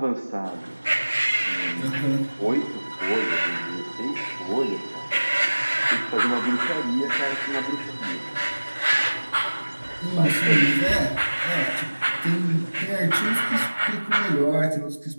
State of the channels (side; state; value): both; inverted; correlation -1.00